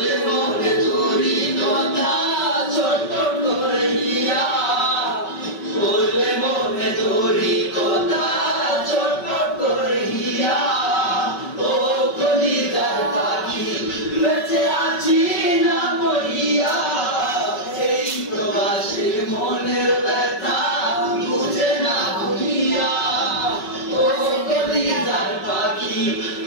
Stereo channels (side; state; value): right; late; 5.3 ms